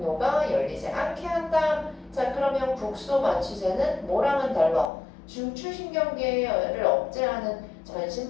열리지 않게 한다. 자, 그러면 국소마취제는 뭐랑은 달라? 중추신경계를 억제하는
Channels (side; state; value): right; drops out; at 4.9 s